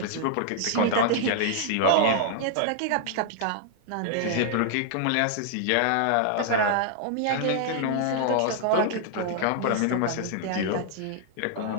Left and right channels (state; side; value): different; both; correlation -0.01